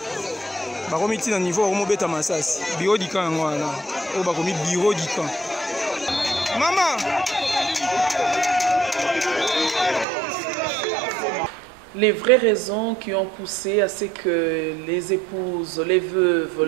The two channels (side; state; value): left; drops out; at 10.1 s